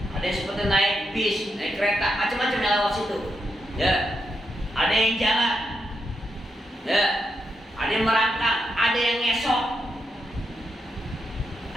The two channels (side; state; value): both; normal; correlation 0.83